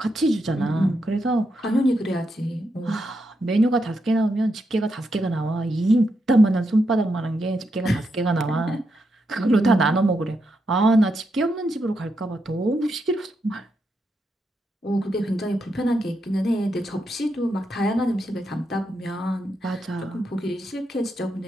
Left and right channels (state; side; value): normal; both; correlation 0.83